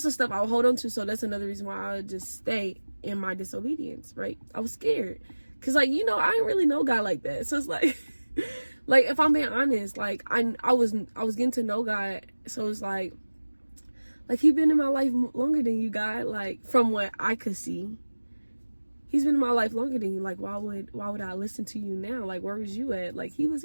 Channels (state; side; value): inverted; both; correlation -1.00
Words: the stuff I would hold on to. So that's another reason why I would just stay in my disobedience, right? I was scared. Because, like, you know, I didn't really know God like that. So it's like... Like, if I'm being honest, like, I was getting to know God, so it's like he been in my life longer than you, God. Like, from what I could see, he's been in my life longer than you. Like, why would I listen to you now? Like, where was you at? Like, he was